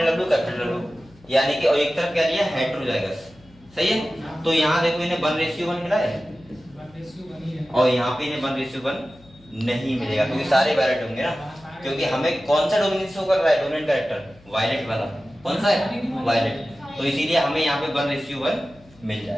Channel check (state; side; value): noise; left; hum, 26 dB below the sound